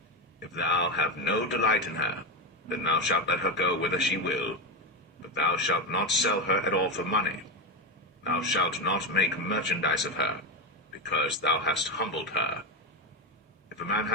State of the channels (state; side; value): normal; both; correlation 0.12